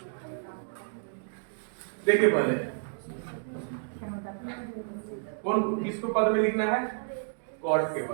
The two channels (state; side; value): silent; left; digital silence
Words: देखिए पहले कौन किसको पद में लिखना है? कॉट के